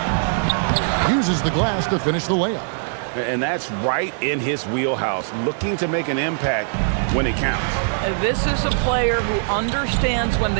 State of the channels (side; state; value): left; silent; 62 dB below the other